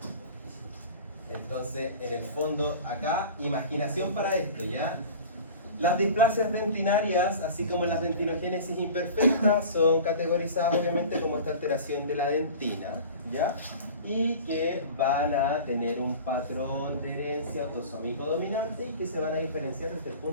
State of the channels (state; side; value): inverted; both; correlation -0.38